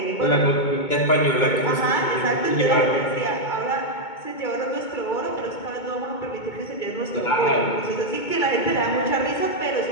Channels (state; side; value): late; right; 2.2 ms